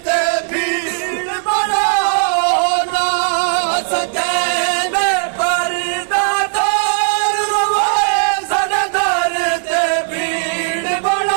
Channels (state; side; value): silent; left; 56 dB below the other